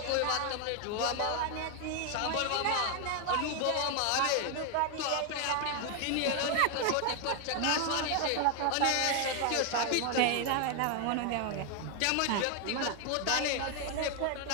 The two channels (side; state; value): both; different; correlation 0.00